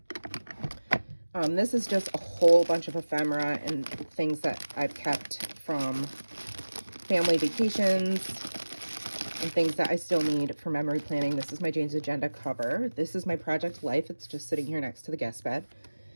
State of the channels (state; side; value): inverted; both; correlation -1.00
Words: This is just a whole bunch of ephemera and things that I've kept from family vacations and things that I still need for memory planning. This is my Jane's Agenda cover. This is my Project Life. It's just sitting here next to the guest bed.